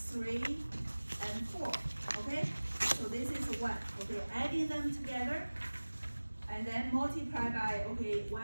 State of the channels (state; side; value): inverted; both; correlation -1.00